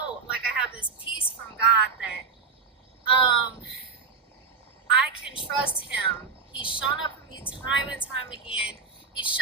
I have this peace from God that I can trust him. He's shown up for me time and time again. He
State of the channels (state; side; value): quieter; left; 5.0 dB